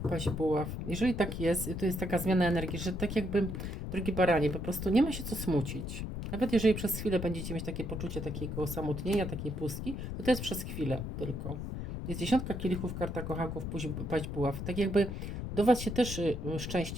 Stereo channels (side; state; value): left; noise; rumble, 5 dB below the sound